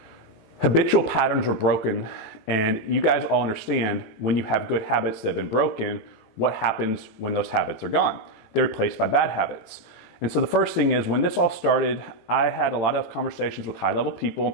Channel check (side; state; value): right; late; 18 ms